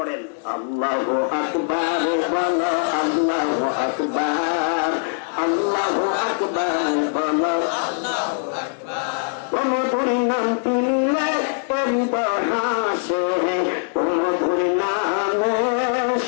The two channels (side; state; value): right; silent; digital silence